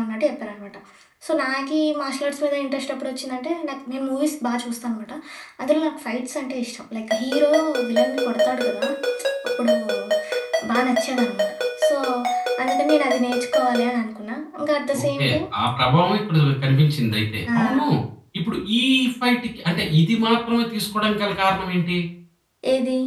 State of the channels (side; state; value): both; identical; correlation 1.00